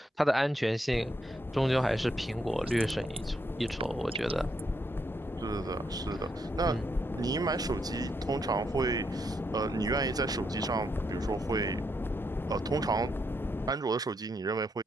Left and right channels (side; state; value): both; normal; correlation 0.78